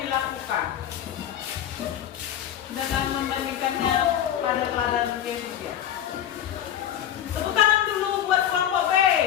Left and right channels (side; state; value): right; quieter; 10.8 dB